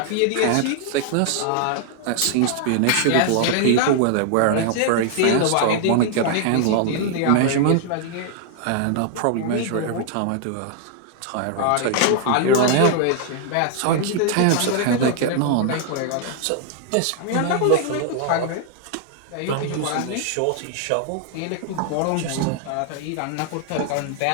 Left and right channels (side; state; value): both; different; correlation 0.00